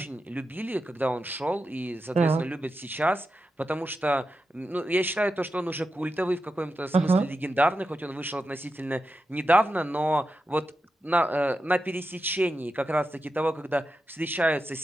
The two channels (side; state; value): both; normal; correlation 0.89